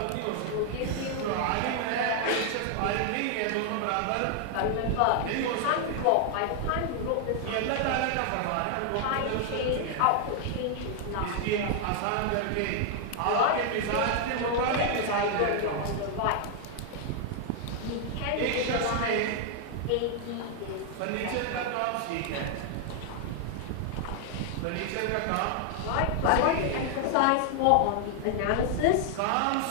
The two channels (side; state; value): both; different; correlation 0.00